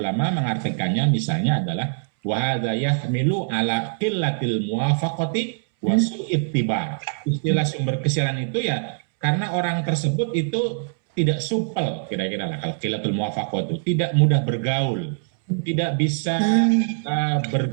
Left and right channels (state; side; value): silent; left; 63 dB below the other